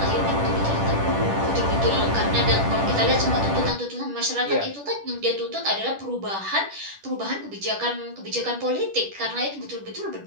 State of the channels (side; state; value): left; late; 10 ms